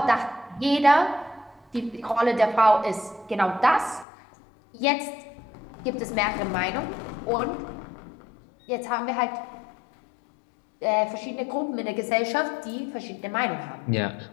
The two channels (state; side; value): drops out; right; at 4.0 s